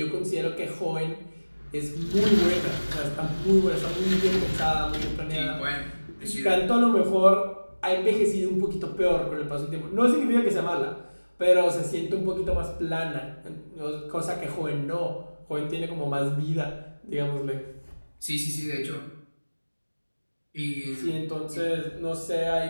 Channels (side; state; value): both; inverted; correlation -1.00